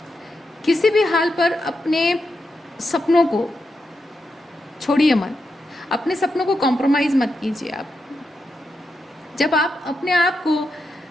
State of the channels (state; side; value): normal; both; correlation 0.86